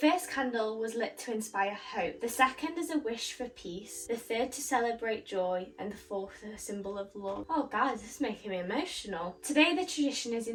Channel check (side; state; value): both; identical; correlation 1.00